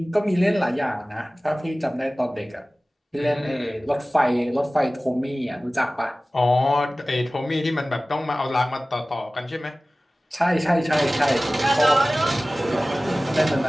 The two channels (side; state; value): both; normal; correlation 0.97